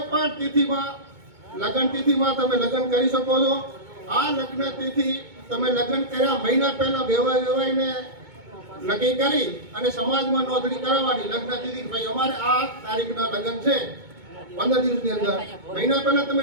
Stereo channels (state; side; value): late; left; 2.2 ms